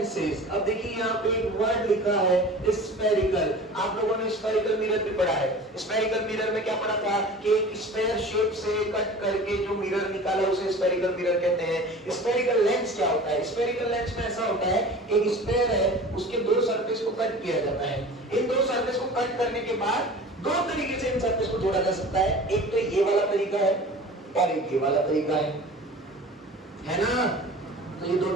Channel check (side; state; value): both; normal; correlation 0.40